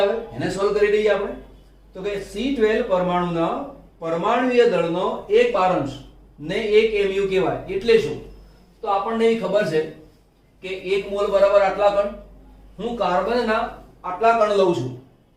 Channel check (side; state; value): both; identical; correlation 1.00